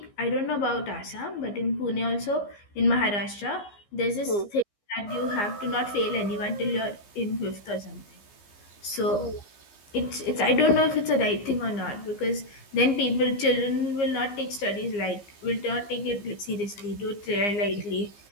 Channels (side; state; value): right; late; 15 ms